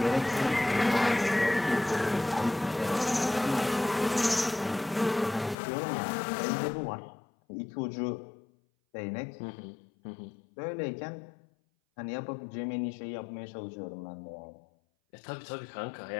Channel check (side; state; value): right; drops out; at 5.6 s